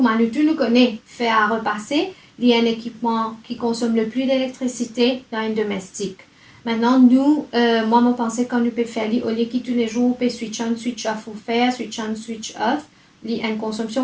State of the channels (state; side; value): identical; both; correlation 1.00